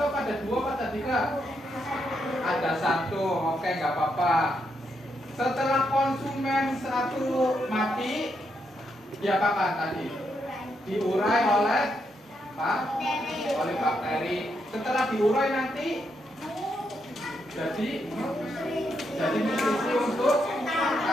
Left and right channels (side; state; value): both; normal; correlation 0.80